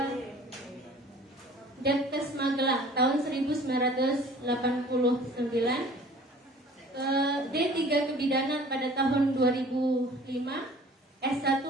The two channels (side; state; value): both; normal; correlation 0.48